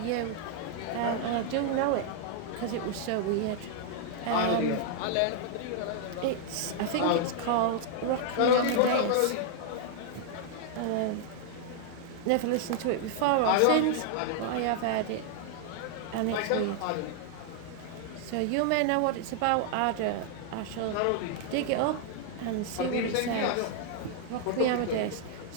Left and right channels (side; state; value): both; different; correlation 0.00